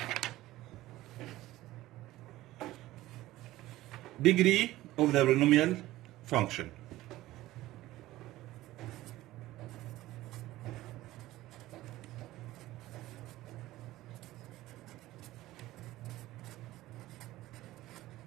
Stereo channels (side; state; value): left; quieter; 16.5 dB